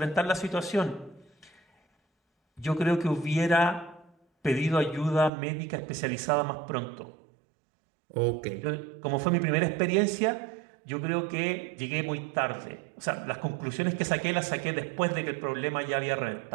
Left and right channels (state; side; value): drops out; left; at 5.3 s